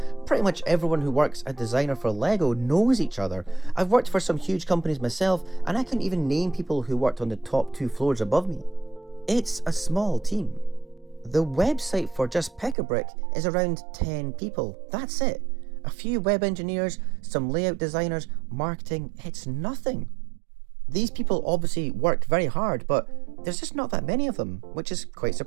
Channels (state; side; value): drops out; left; at 12.8 s